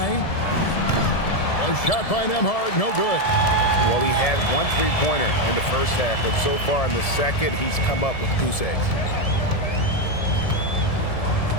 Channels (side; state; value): right; late; 1.7 ms